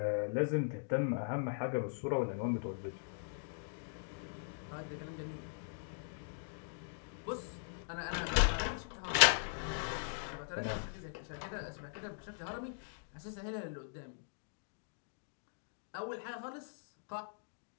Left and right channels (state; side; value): silent; right; digital silence